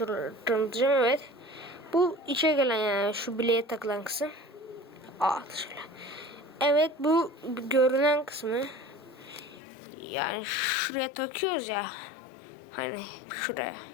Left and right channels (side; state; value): right; drops out; at 9.6 s